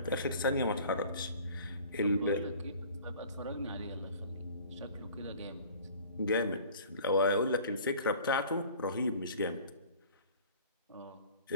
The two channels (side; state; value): both; inverted; correlation -0.48